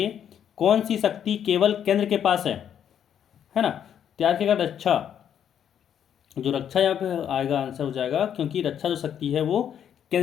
कौन सी शक्ति केवल केंद्र के पास है ना। त्याग के रक्षा, जो रक्षा यहाँ पे आएगा आंसर हो जाएगा, क्योंकि रक्षा जो शक्ति है वो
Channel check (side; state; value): right; quieter; 9.2 dB